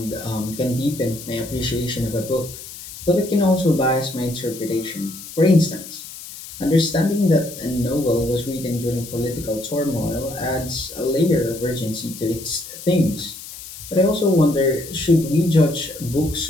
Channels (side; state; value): left; noise; hiss, 13 dB below the sound